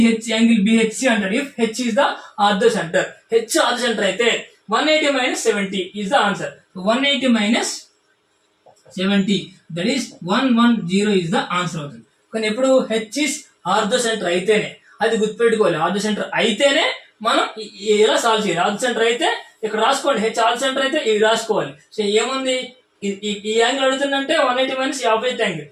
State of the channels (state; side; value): identical; both; correlation 1.00